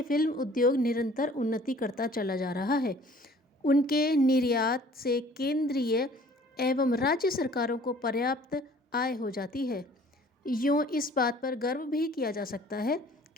फिल्म उद्योग निरंतर उन्नति करता चला जा रहा है। उनके निर्यात से केंद्रीय एवं राज्य सरकारों को पर्याप्त आय हो जाती है। यूँ इस बात पर गर्व भी किया जा सकता है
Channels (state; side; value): normal; both; correlation 0.52